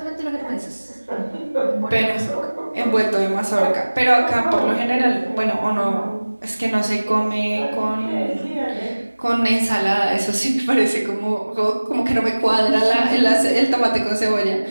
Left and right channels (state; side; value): inverted; both; correlation -1.00